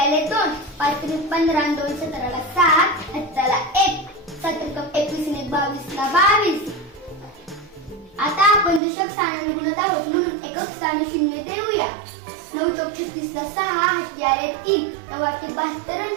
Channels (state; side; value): drops out; left; at 8.8 s